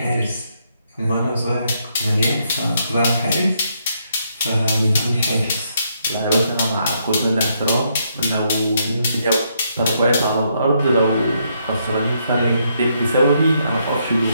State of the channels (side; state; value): both; inverted; correlation -0.75